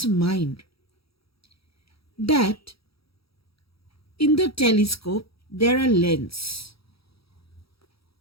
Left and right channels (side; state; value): right; late; 0.76 ms